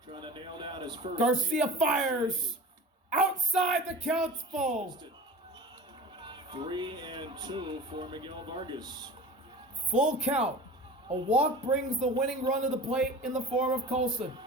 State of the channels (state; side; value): normal; both; correlation 0.36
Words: Trying to nail down his first. Garcia fires. Outside, the count's full. 3-2 for Miguel Vargas. Full count. A walk brings the winning run to the plate in the form of Colson.